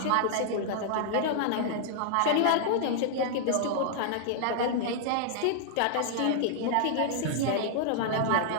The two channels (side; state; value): both; different; correlation -0.01